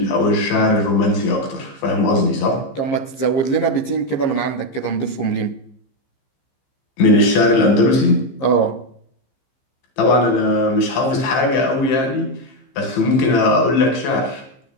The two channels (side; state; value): right; late; 15 ms